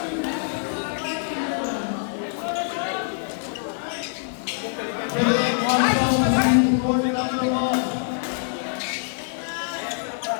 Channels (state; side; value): silent; right; digital silence